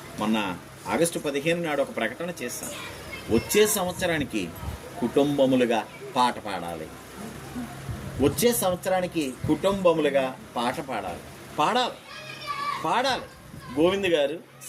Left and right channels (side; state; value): both; identical; correlation 1.00